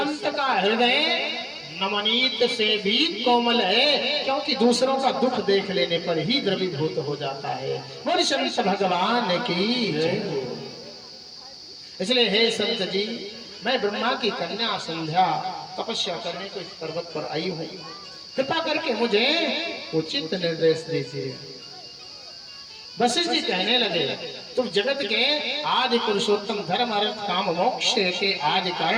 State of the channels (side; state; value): both; identical; correlation 1.00